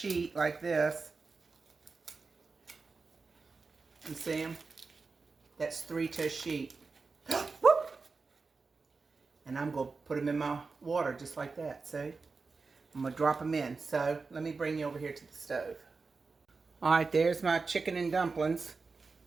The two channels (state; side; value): quieter; left; 4.3 dB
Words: like this. You see them? That's 3 to a sheet. Whoop! And I'm going to put them in my water just like that. See? I'm going to drop them in. So let me bring you over here to the stove. All right, there's my chicken and dumplings.